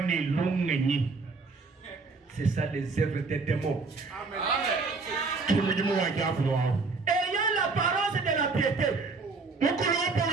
C'est ça les œuvres des démons. Ayant l'apparence de la piété.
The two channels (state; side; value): quieter; left; 4.1 dB